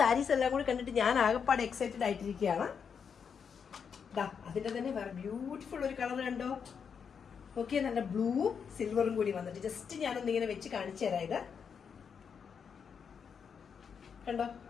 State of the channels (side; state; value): right; quieter; 6.7 dB